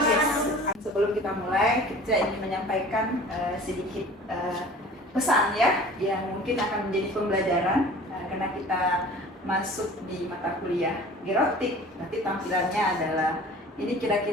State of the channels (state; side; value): normal; both; correlation 0.44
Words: Sebelum kita mulai, kita ingin menyampaikan sedikit pesan ya, yang mungkin akan menjadi pembelajaran karena kita masuk di mata kuliah gerontik. Nanti tampilannya adalah ini